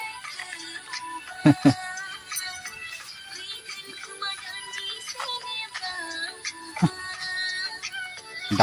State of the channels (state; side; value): identical; both; correlation 1.00